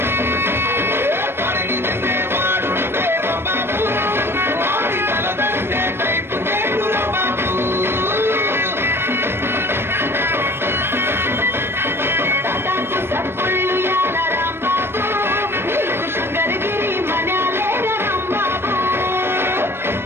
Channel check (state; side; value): late; left; 0.12 ms